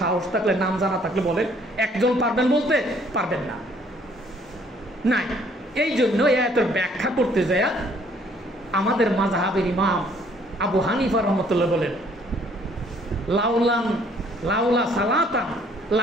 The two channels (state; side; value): normal; both; correlation 0.62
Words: সাহস থাকলে, নাম জানা থাকলে বলেন। একজন পারবেন বলতে? পারবেন না, নাই। এই জন্য এই আয়াতের ব্যাখ্যা করতে যায় আমাদের মাযহাবের ইমাম আবু হানিফা রহমতুল্লাহ বলেন, লাউলা সালাতান